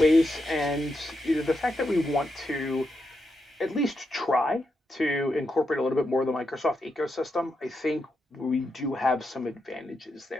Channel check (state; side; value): normal; both; correlation 0.85